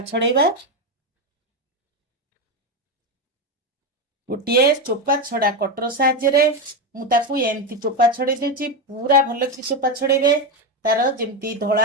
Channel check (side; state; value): both; normal; correlation 0.11